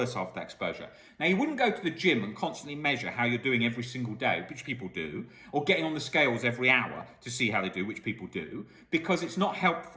after that exposure? Now, you wouldn't go to the gym and constantly measure how you're doing every single day, which people do, or getting on the scales every hour to see how they do, which people do, because it's not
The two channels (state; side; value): identical; both; correlation 1.00